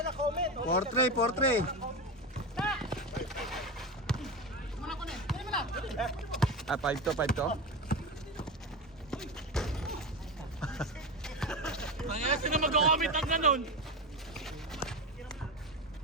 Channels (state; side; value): normal; both; correlation 0.19